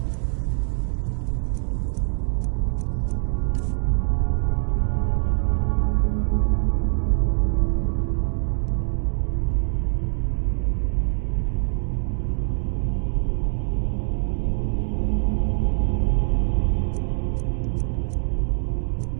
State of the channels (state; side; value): silent; left; digital silence